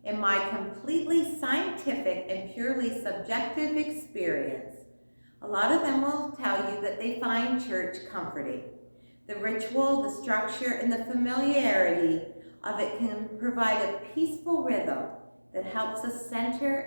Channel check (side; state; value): both; inverted; correlation -1.00